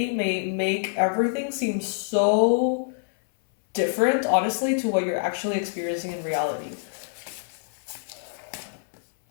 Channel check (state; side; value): silent; right; 61 dB below the other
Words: may make everything seem so different, honestly, to what you're actually experiencing in reality.